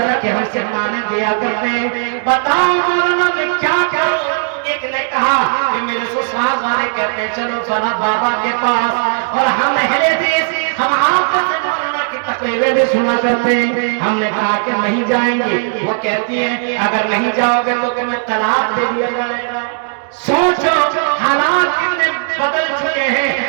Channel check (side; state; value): left; silent; digital silence